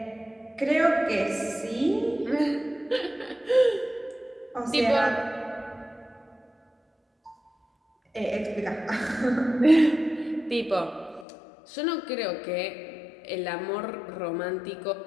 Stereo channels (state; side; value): drops out; right; at 11.2 s